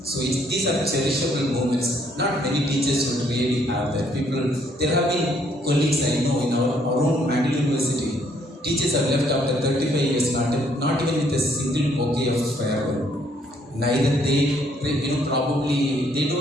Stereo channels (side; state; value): both; normal; correlation 0.67